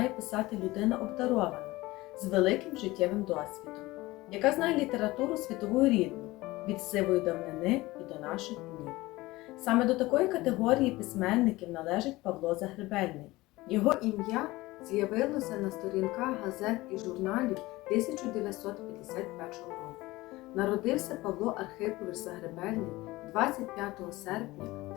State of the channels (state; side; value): quieter; right; 19.6 dB